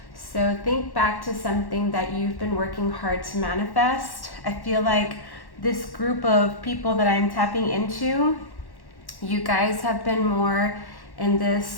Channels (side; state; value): right; late; 1.1 ms